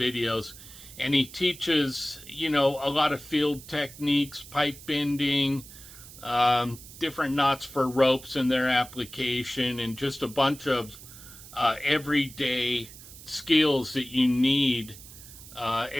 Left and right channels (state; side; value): noise; right; hiss, 17 dB below the sound